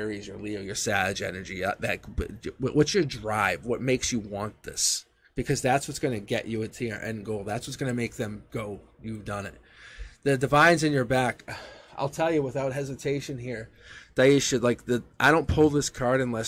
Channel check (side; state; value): both; identical; correlation 1.00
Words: your Leo, your Sag energy. What's your drive? What makes you want this? Because that's what's going to get you into your end goal. That's what's going to make them go, you've done it. The divine's in your back. I'll tell you without hesitation here, Daisha, I don't pull this card